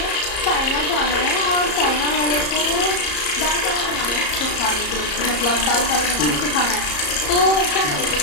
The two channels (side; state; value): right; late; 34 ms